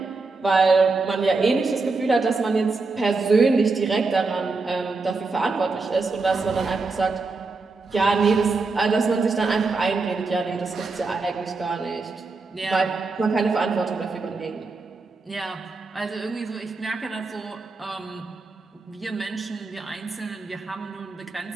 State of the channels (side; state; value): left; quieter; 3.9 dB